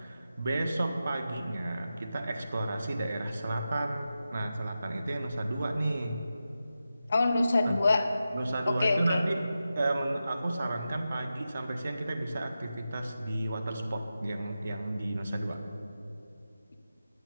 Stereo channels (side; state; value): both; inverted; correlation -0.91